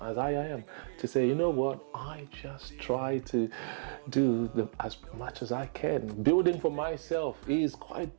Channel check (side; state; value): left; silent; digital silence